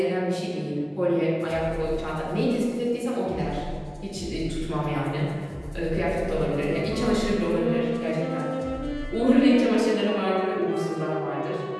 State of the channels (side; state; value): both; identical; correlation 1.00